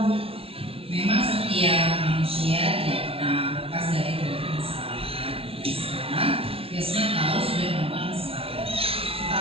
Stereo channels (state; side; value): late; left; 0.27 ms